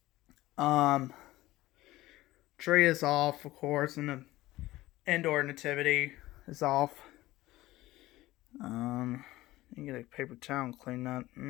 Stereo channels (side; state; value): right; quieter; 17.4 dB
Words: Tree is off, of course, and the indoor nativity is off. You get a paper towel and clean that.